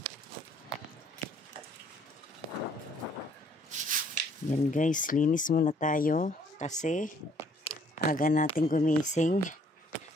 Yan guys, linis muna tayo kasi aga natin gumising.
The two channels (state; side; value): normal; both; correlation 0.62